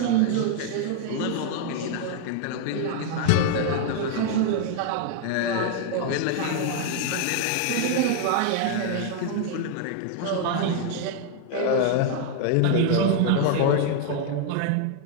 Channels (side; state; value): both; different; correlation 0.00